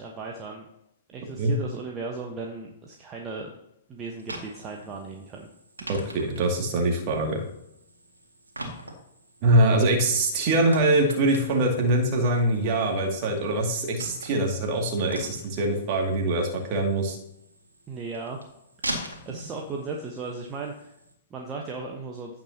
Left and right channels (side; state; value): both; inverted; correlation -0.35